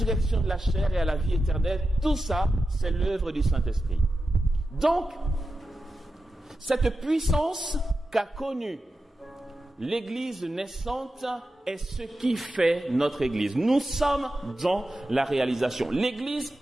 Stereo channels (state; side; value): normal; both; correlation 0.92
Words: de la chair et à la vie éternelle. Tout ça, c'est l'œuvre du Saint-Esprit. Donc, cette puissance qu'a connue l'Église naissante est ce qui fait notre Église. Nous sommes dans la réalisation. L'Église